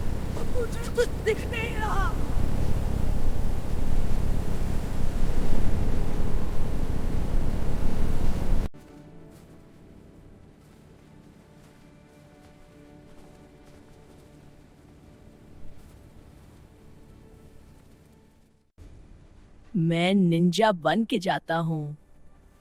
मुझे कुछ दिख नहीं रहा। मैं निंजा बन के जाता हूँ।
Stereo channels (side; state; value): both; identical; correlation 1.00